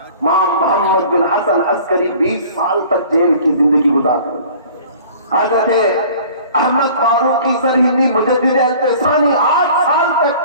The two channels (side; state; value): both; inverted; correlation -0.47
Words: امام محمد بن حسن عسکری 20 سال تک جیل کی زندگی گزارے. حضرت احمد فاروقی سرہندی مجدد التسانی 8 سال